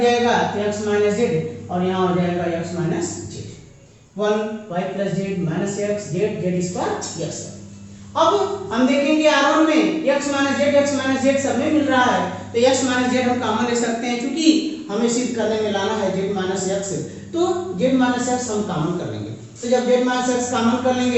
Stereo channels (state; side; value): identical; both; correlation 1.00